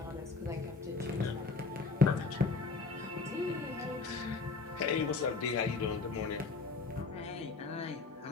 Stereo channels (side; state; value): right; quieter; 4.2 dB